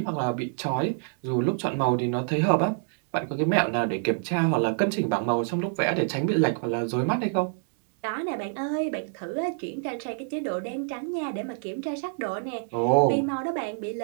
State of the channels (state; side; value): silent; left; digital silence